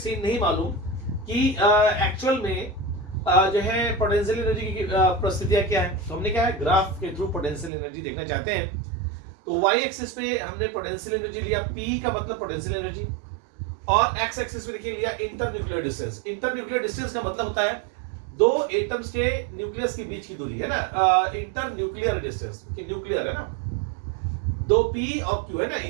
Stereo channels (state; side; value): drops out; left; at 7.7 s